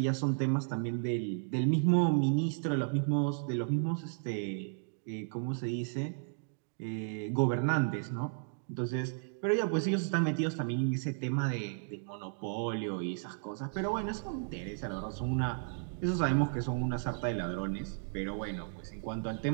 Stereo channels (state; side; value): silent; left; digital silence